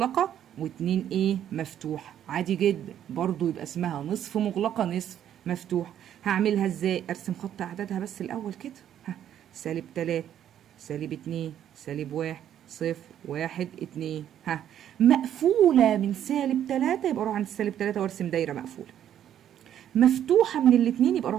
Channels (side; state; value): left; quieter; 10.4 dB